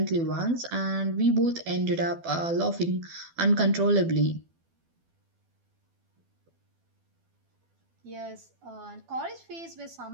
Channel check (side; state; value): left; late; 12 ms